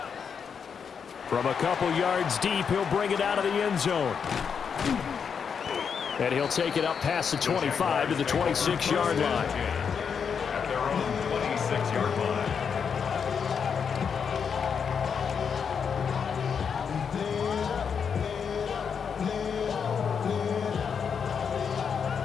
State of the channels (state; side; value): quieter; right; 6.7 dB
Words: From a couple yards deep, he'll bring it out of the end zone. And he'll take it up past the 25 to the 26-yard line. At their own 26-yard line.